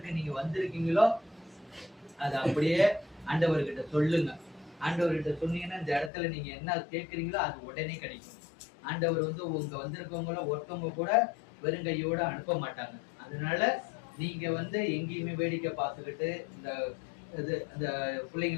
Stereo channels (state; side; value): drops out; right; at 6.1 s